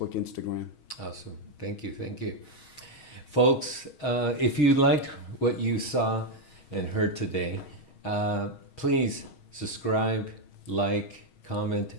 Instagram. Awesome. Thank you. Thank you. Folks, if you liked what you saw and heard today, please subscribe, like, comment,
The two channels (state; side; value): late; right; 6.3 ms